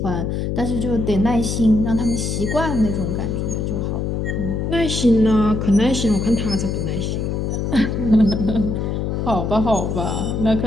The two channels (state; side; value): noise; left; hum, 1 dB below the sound